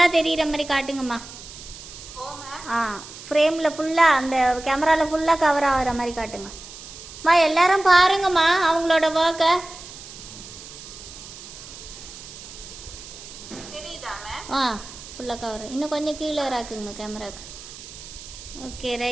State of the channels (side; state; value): right; noise; hiss, 15 dB below the sound